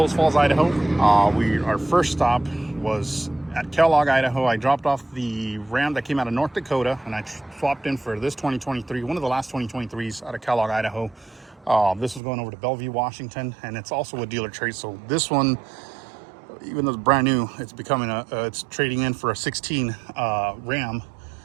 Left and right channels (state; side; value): drops out; left; at 12.2 s